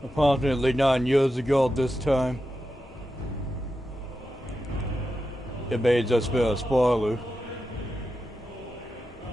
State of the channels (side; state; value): both; normal; correlation 0.89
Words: Approximately 9 years ago this time. It may just be a spoiler.